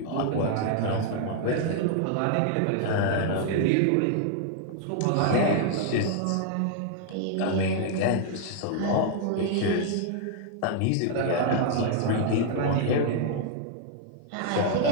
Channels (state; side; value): different; both; correlation -0.01